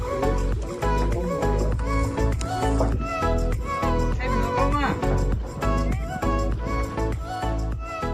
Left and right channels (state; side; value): identical; both; correlation 1.00